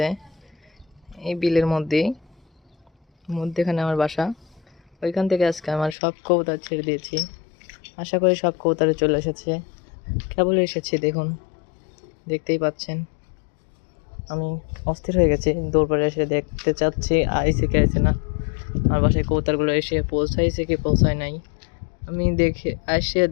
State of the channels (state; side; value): drops out; right; at 6.0 s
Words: এই বিলের মধ্যেখানে আমার বাসা। ওইখান থেকে আজকে আমার সব কবুতর ছেড়ে দিয়েছি। আশা করি সব কবুতরে চলে এসেছে। কেবল এসেছি, দেখুন, দেখতেই পাচ্ছেন। আমি অস্থির হয়ে গেছি, দৌড় পড়ে এসে দেখতে চাচ্ছি আইসে কি আইসে না। আমার বাসায় কবুতরগুলো এসে পৌঁছাইছে কি পৌঁছায় নাই। আমি